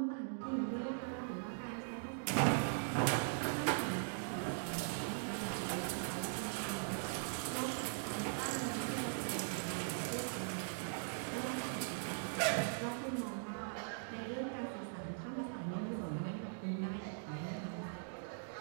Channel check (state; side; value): silent; left; digital silence